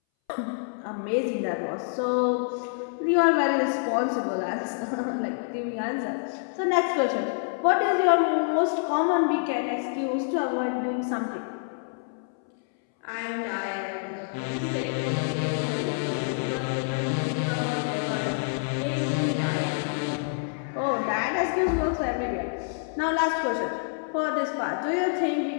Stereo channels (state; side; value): silent; right; 60 dB below the other